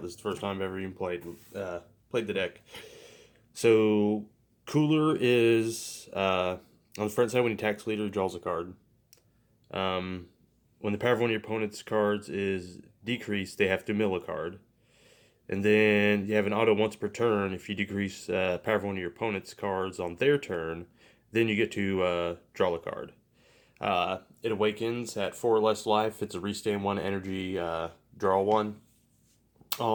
This is the first time I've ever even played the deck. So cooler is on the front side when you tax leader, draws a card. Um, when the power of one of your opponent's cards is decreased, they have to mill a card. And then you have an auto once per turn. If you decrease power of one of your opponent's cards on their turn, then you get to draw a card. It awakens at 4 or less life. It's a restand 1 energy, draw 1.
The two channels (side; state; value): both; identical; correlation 1.00